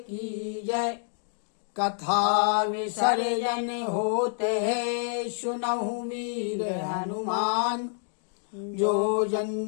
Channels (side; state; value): right; silent; digital silence